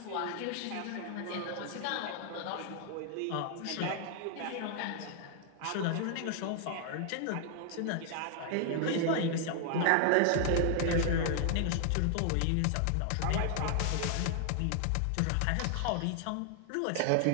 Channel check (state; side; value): different; both; correlation 0.00